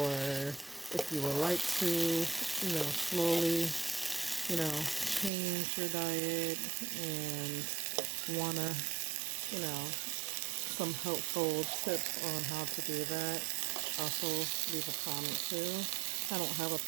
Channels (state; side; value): drops out; left; at 5.3 s